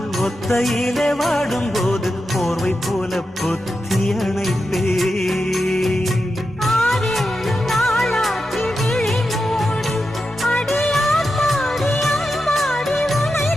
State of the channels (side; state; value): both; normal; correlation 0.89